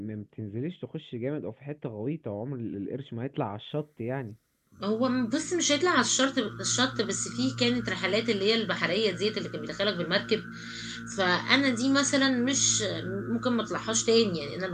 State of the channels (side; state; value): both; identical; correlation 1.00